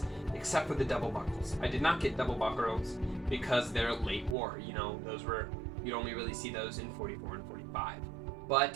except for the double buckles. I did not get double buckles because they're late war. You know, you'd only really see those in 44 and 45.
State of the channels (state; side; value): drops out; left; at 4.4 s